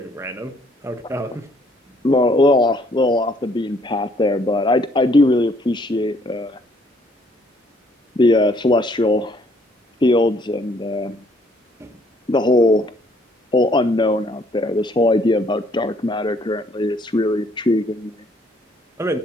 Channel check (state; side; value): normal; both; correlation 0.65